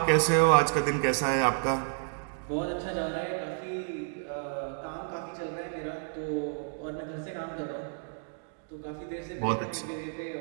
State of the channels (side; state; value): left; silent; digital silence